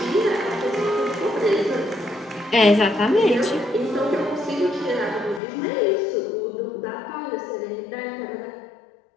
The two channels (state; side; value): drops out; right; at 5.4 s